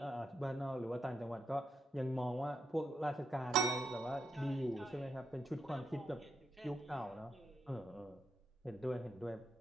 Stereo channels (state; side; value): normal; both; correlation 0.82